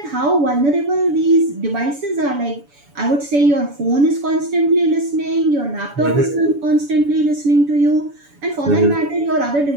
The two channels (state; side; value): late; left; 7.0 ms